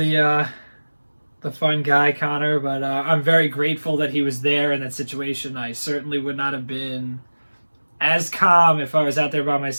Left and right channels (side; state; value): both; inverted; correlation -1.00